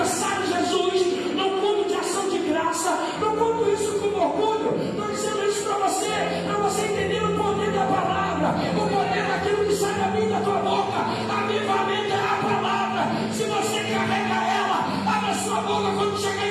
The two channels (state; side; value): identical; both; correlation 1.00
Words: Jesus no culto de ação de graça. Não conto isso com orgulho, estou dizendo isso para você entender o poder da palavra, o poder daquilo que sai da minha e da tua boca. Avivamento é a palavra. Se você carrega ela, abre a sua boca quando chegar